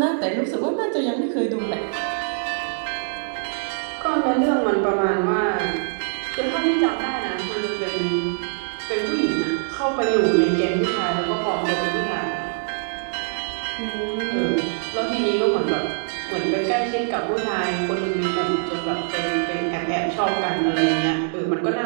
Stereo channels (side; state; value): left; silent; digital silence